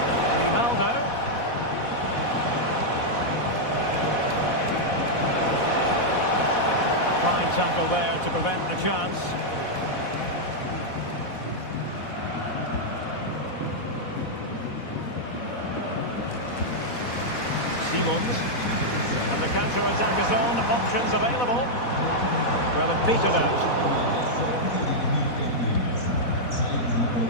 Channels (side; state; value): right; late; 4.1 ms